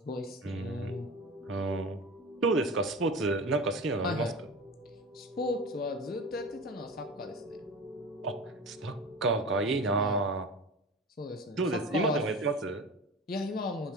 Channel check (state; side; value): normal; both; correlation 0.33